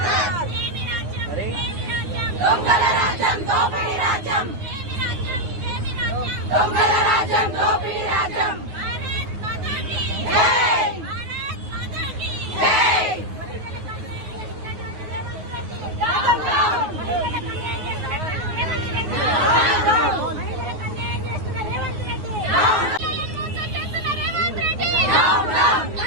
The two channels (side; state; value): left; late; 9.5 ms